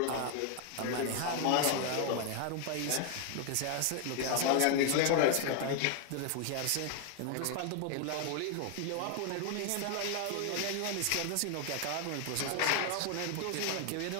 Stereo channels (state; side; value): different; both; correlation 0.00